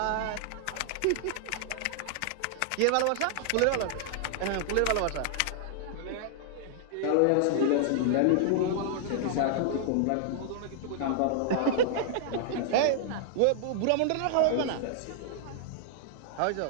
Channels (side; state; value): both; different; correlation -0.01